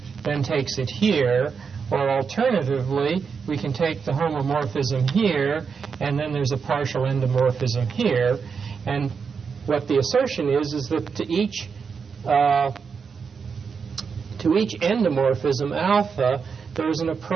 then takes it here, or alternatively, we can take the homomorphism here, and then there's a partial endomorphism here. And what the assertion is that to each endomorphism alpha, there's an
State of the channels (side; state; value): left; quieter; 5.8 dB